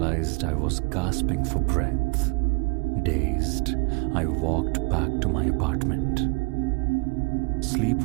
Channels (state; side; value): quieter; left; 30.7 dB